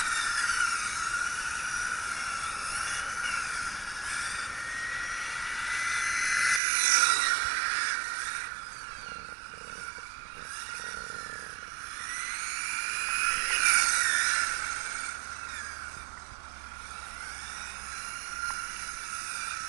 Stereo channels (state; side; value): drops out; left; at 6.6 s